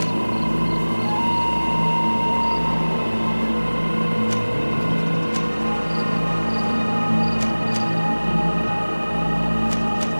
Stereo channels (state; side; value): inverted; both; correlation -1.00